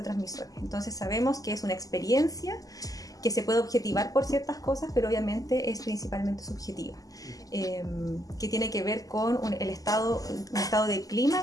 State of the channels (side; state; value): right; late; 0.17 ms